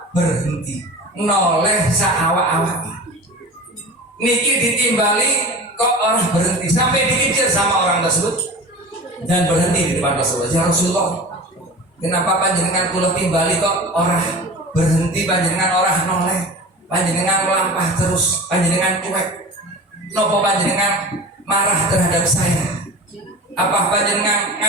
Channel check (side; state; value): both; normal; correlation 0.35